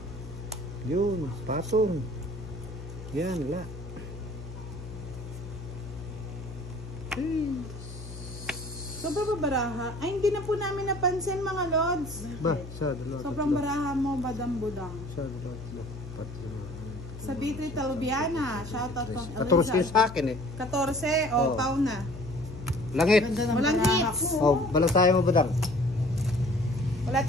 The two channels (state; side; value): noise; left; hum, 12 dB below the sound